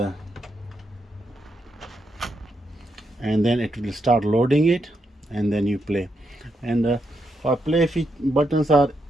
and then it will start loading it, and then you play. And for play buttons are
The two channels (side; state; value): both; normal; correlation 0.81